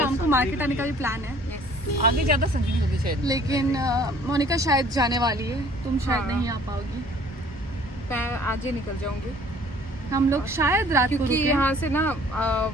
को मार्केट आने का भी प्लान है, आगे ज्यादा संगीन होगी शायद। लेकिन मोनिका शायद जाने वाली है, तुम शायद हाँ। नहीं आ पाओगी। मैं आज ही निकल जाऊंगी, हम लोग शायद रात को क्योंकि रुकें। यहाँ से ना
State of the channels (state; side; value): normal; both; correlation 0.54